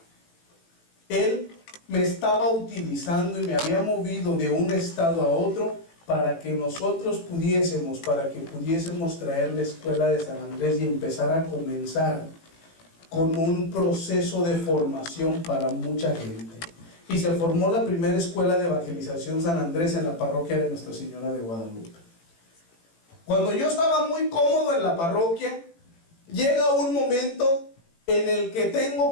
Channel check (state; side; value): late; right; 18 ms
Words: Él me estaba utilizando y me había movido de un estado a otro para que nosotros pudiésemos traer la escuela de San Andrés y empezar a comenzar con un proceso de formación para mucha gente. Y se formó la primera escuela de evangelización San Andrés en la parroquia de Nuestra Señora de Guadalupe. Cuando yo estaba muy cómodo en la parroquia, llega un momento en el que tengo